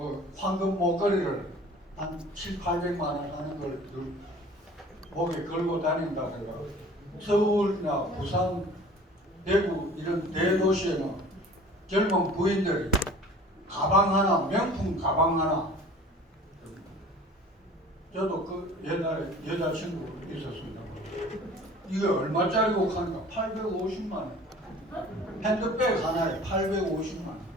황금 목걸이를 한 7, 800만 원 하는 걸 목에 걸고 다닌다 그래가 서울이나 부산, 대구 이런 대도시에는 젊은 부인들이 가방 하나, 명품 가방 하나. 저도 그 옛날에 여자친구 있었습니다. 이게 얼마짜리고 하니까 850만 원. 핸드백 하나에 850만 원.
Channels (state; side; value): normal; both; correlation 0.46